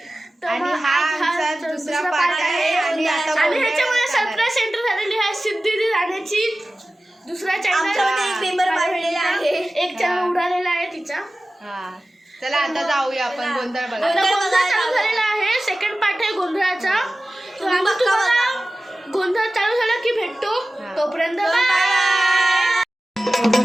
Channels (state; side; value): normal; both; correlation 0.96